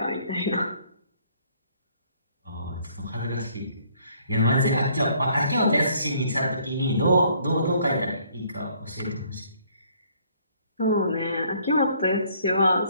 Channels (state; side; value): inverted; both; correlation -0.63